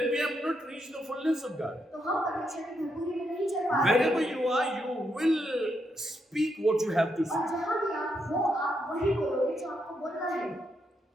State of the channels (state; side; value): normal; both; correlation 0.80